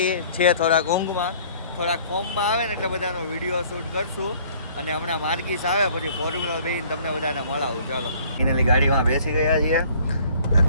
છે, થોડાક ઊંઘમાં, થોડાક ફોર્મમાં આવે ને એટલે બધાનો વિડીયો શૂટ કરશું. અને હમણાં માર્ગીસ આવે પછી ફોર્મ્યુલર બેન તમને બધાને મળાવું. ચાલો, ફાઇનલી ગાડીમાં બેસી ગયા છીએ,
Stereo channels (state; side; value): inverted; both; correlation -0.55